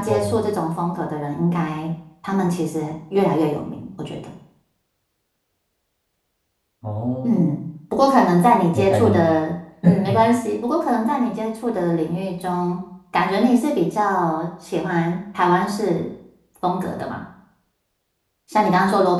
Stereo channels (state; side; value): identical; both; correlation 1.00